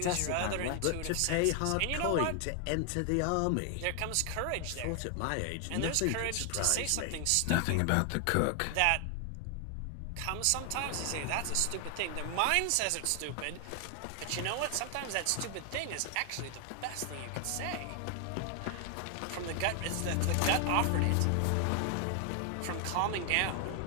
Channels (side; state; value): both; different; correlation 0.00